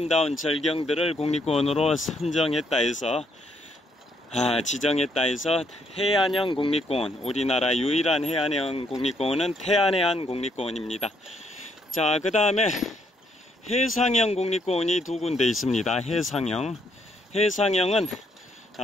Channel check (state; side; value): normal; both; correlation 0.72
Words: 절경들을 국립공원으로 선정했다 해서 지정했다 해서 해안형 국립공원, 우리나라 유일한 해안형 국립공원은 태안해안 국립공원입니다. 자, 그 다음에 해상형 국립공원이 두 군데 있습니다. 해상형은